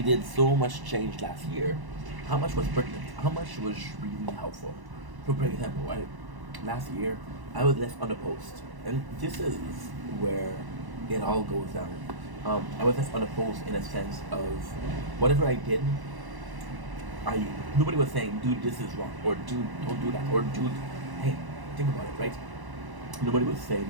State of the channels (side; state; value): left; late; 1.1 ms